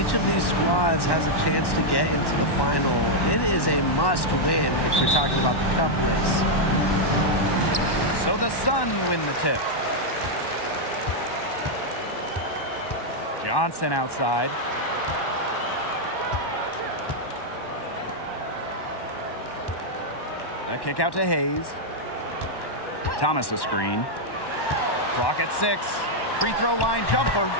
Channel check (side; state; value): right; late; 1.1 ms